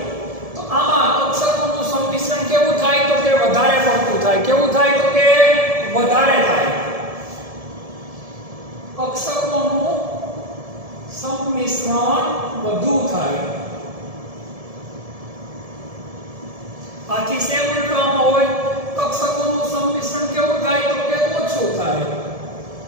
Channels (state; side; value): late; left; 1.7 ms